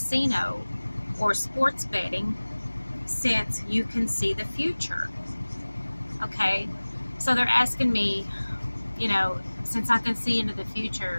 or sports betting since you can see the future? Okay, so they're asking me, since I can see into the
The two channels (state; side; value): inverted; both; correlation -1.00